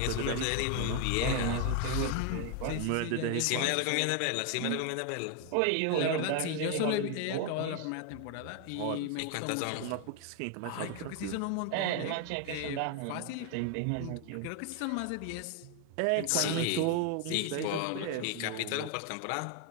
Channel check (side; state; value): both; different; correlation 0.01